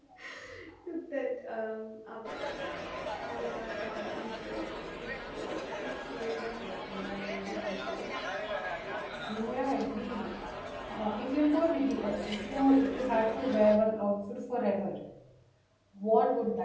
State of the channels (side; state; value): both; identical; correlation 1.00